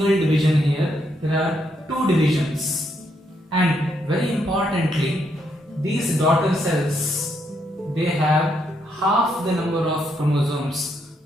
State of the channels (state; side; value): normal; both; correlation 0.76